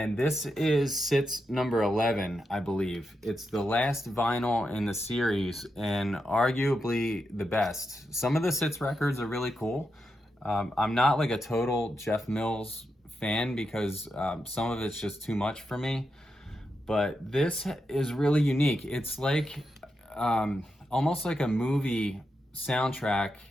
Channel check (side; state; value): both; normal; correlation 0.86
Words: this is Sits number 11, I believe. It's the last vinyl in the series and arguably the best. Some of the Sits records are really cool. I'm not like a total Jeff Mills fan because some of it's just too much for me. But this is really unique. It's like almost like a movie soundtrack